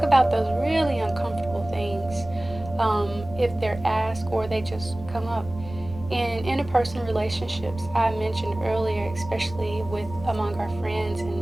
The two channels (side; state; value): right; noise; rumble, 14 dB below the sound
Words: about those really uncomfortable things if they're asked or they just come up. In interpersonal relationships, I mentioned earlier, especially with among our friends